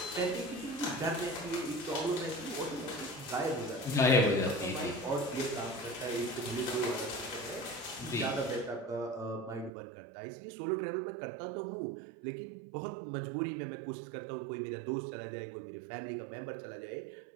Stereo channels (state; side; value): drops out; left; at 9.7 s